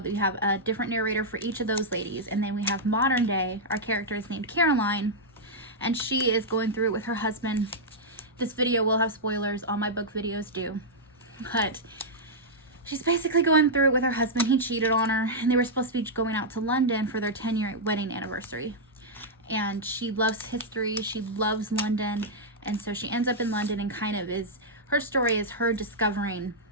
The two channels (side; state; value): both; normal; correlation -0.07